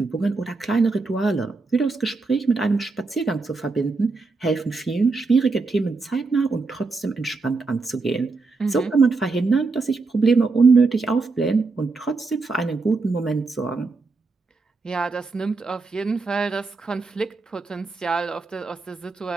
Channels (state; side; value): quieter; left; 4.0 dB